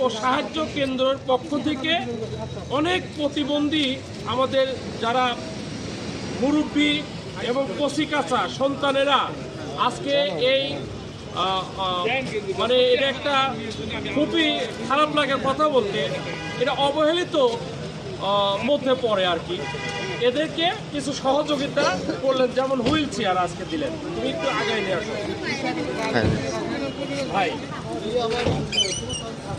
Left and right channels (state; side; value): identical; both; correlation 1.00